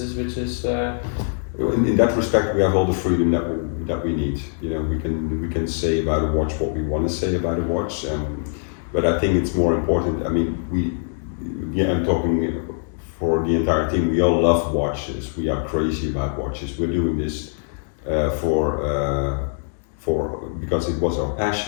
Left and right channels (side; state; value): right; silent; digital silence